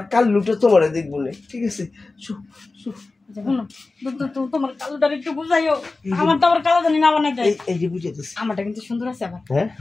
কাল্লুটা তোমারে দেখবো না ঠিক আছে তোমার কালোটা একটু বুঝাইও আমার তো আবার কালো জানি না বানাই দেয় এই যে বুঝে দিচ্ছি আমারটা কিন্তু সুন্দর আছে আবার হ্যাঁ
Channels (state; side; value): quieter; right; 3.5 dB